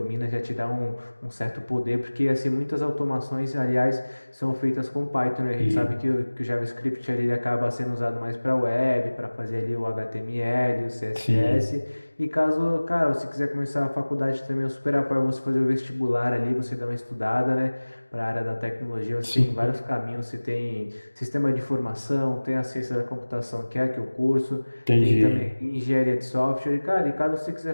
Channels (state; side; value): inverted; both; correlation -1.00